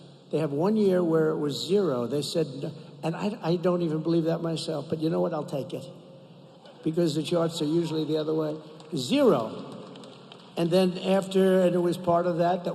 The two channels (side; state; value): both; identical; correlation 1.00